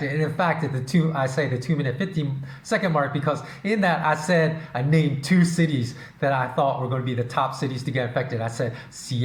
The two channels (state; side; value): identical; both; correlation 1.00